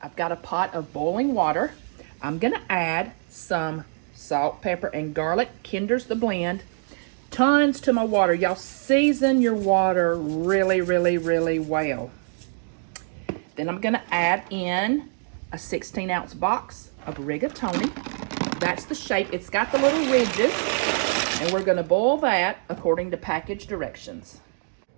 I've got a pot of boiling water. I'm gonna add some salt, pepper, and garlic. Kinder's the blend. Tons to my water. Y'all season your water really, really, really well. Then I'm gonna add in a 16-ounce box of rigatoni. That's the shape. It's got the little ridges. And we're gonna boil that according to package directions.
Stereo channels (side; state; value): left; silent; 62 dB below the other